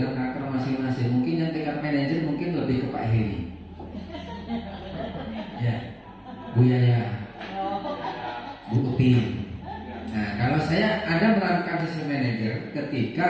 karakter masing-masing. Mungkin yang tingkat manajer mungkin lebih ke Pak Heri. Ya, Bu Yaya, Bu Uti. Nah, kalau saya ada menerapkan sistem manajer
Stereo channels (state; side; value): identical; both; correlation 1.00